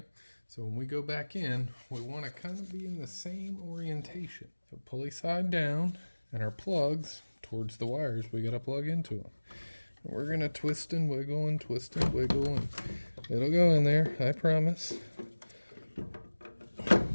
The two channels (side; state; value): both; inverted; correlation -1.00